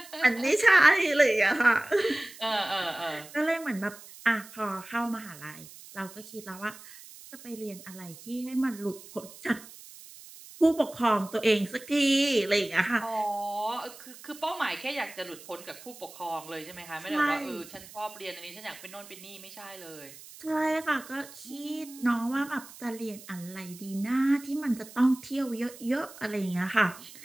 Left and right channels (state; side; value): noise; right; hiss, 18 dB below the sound